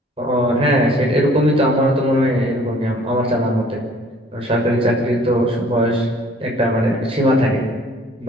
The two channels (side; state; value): both; normal; correlation 0.55